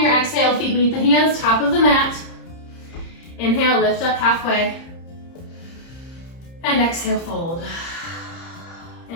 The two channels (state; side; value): late; right; 30 ms